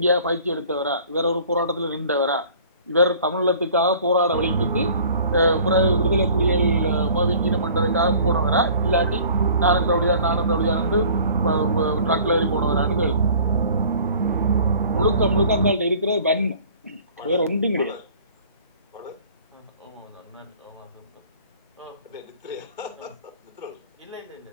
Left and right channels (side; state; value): both; inverted; correlation -0.49